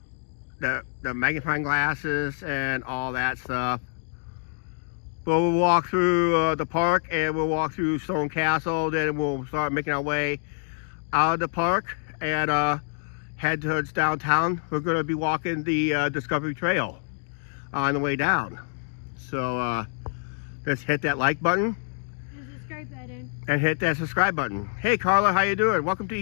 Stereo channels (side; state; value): right; silent; digital silence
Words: magnifying glasses and all that stuff. But we'll walk through the park, and we'll walk through Stone Castle. Then we'll start making our way out of the park and head towards downtown. We're going to be walking the Discovery Trail on the way down. So let's hit that like button. The subscribe button. And hit that subscribe button. Hey Carla, how you doing? Welcome to